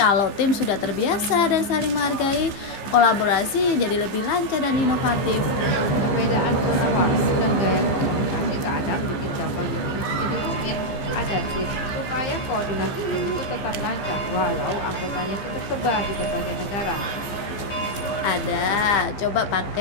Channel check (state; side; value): late; right; 15 ms